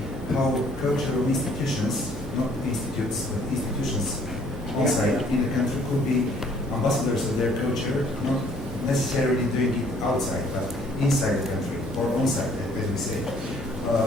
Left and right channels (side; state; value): both; normal; correlation 0.60